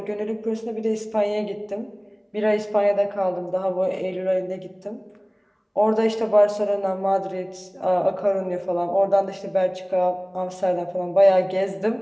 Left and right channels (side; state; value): both; identical; correlation 1.00